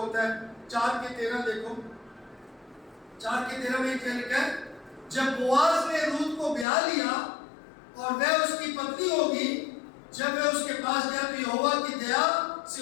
है, 4:13 देखो, 4:13 में क्या लिखा है, जब बोआज ने रूत को ब्याह लिया और वह उसकी पत्नी होगी, जब वह उसके पास गया तो यहोवा की दया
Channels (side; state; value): right; drops out; at 6.7 s